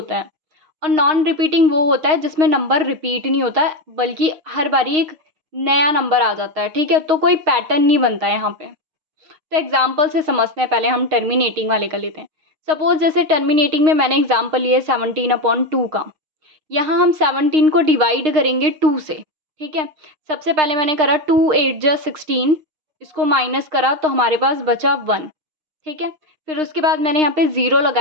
है। और नॉन रिपीटिंग वो होता है जिसमें नंबर रिपीट नहीं होता है, बल्कि हर बारी एक नया नंबर आ जाता है। ठीक है, तो कोई पैटर्न नहीं बनता है यहाँ पे। तो एग्जाम्पल से समझते हैं, पहले हम टर्मिनेटिंग वाले का लेते हैं। सपोज जैसे टर्मिनेटिंग में मैंने एग्जाम्पल लिया 17/2 का। यहाँ हम 17 को डिवाइड करेंगे 2 से। ठीक है, सबसे पहले मैंने करा 2 8 जा 16, इसको माइनस करा तो हमारे पास बचा 1। ठीक है, फिर उसके बाद मैंने यहाँ पे ज़ीरो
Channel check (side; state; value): left; late; 6.5 ms